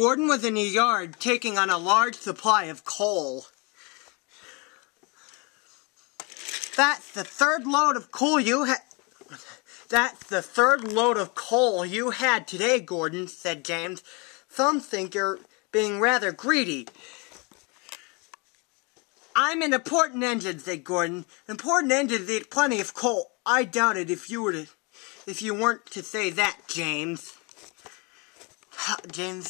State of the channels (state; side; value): quieter; right; 30.1 dB